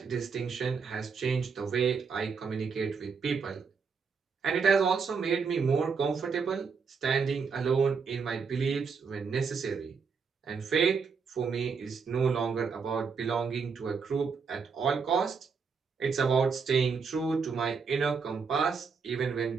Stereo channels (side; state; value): left; quieter; 5.5 dB